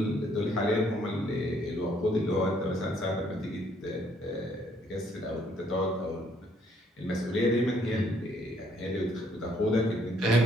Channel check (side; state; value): both; normal; correlation 0.67